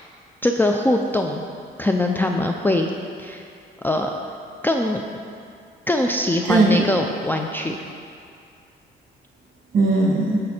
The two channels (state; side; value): normal; both; correlation 0.70